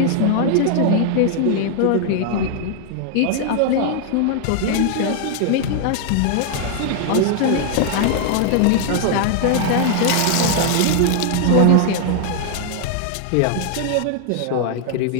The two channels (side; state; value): both; different; correlation 0.00